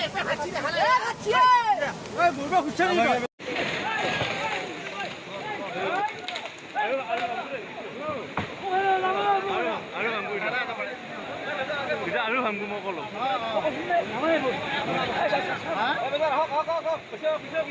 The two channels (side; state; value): both; identical; correlation 1.00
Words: আৰু ভামগো মই কলো